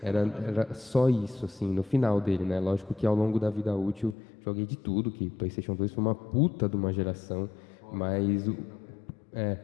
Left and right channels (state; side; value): drops out; right; at 4.2 s